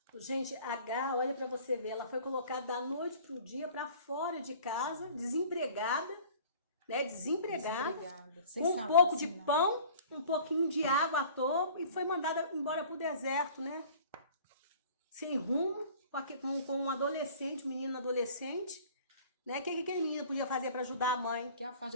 Gente, Agar, olha para você ver, ela foi colocada da noite para o dia para fora de casa, desempregada, né? Desempregada, Sem com um salário, pouco de sem nada. pão, um pouquinho de água à toa, e foi mandada embora para o deserto, né? Sem rumo, com um adolescente, um menino adolescente, né? O que aquele menino podia fazer para ajudar a mãe? Que é a fase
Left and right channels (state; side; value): inverted; both; correlation -0.48